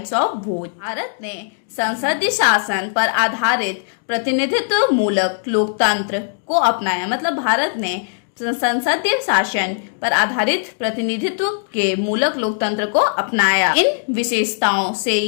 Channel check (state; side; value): silent; right; digital silence